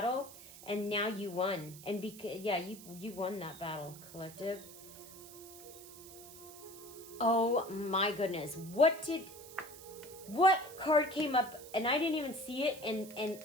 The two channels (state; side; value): noise; right; hiss, 16 dB below the sound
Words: and now you won. And you won that battle, collective. Oh my goodness. What card came up and I didn't even see it,